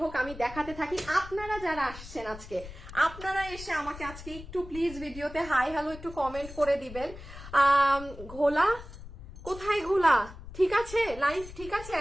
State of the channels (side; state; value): left; noise; rumble, 14 dB below the sound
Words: হোক আমি দেখাতে থাকি। আপনারা যারা আসছেন আজকে, আপনারা এসে আমাকে আজকে একটু প্লিজ ভিডিওতে হাই হ্যালো একটু কমেন্ট করে দিবেন। ঘোলা কোথায়? ঘোলা ঠিক আছে, লাইভ ঠিক আছে।